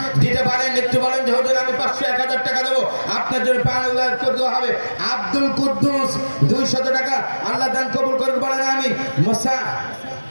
দিতে পারেন। একটু বলেন যে হুজুর আমি 500, 1000 টাকা দেবো, আপনার জন্য 5000 করে দেওয়া হবে। আব্দুল কুদ্দুস 200 টাকা আল্লাহ দান কবুল করুন বলেন আমিন। মোসা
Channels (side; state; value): both; inverted; correlation -1.00